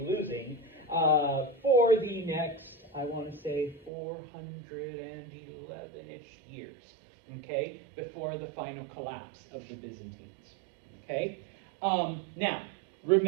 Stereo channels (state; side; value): drops out; left; at 3.9 s